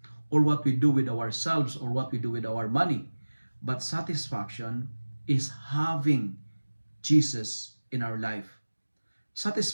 or what we do with ourselves or what we do with our money. But satisfaction is having Jesus in our life.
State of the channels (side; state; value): both; inverted; correlation -1.00